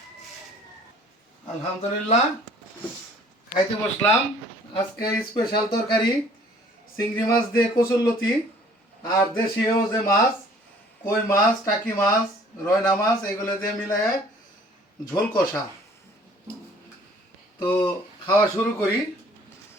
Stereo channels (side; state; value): both; normal; correlation 0.55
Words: আলহামদুলিল্লাহ খাইতে বসলাম। আজকে স্পেশাল তরকারি চিংড়ি মাছ দিয়ে কচুরলতি আর দেশীয় যে মাছ কই মাছ, টাকি মাছ, রয়না মাছ এগুলো দিয়ে মিলায় ঝোল কষা। তো খাওয়া শুরু করি।